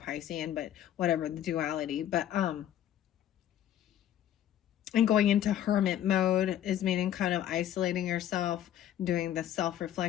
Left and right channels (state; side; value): quieter; right; 11.1 dB